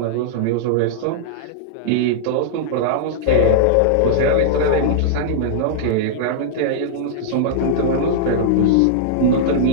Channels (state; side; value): different; both; correlation -0.02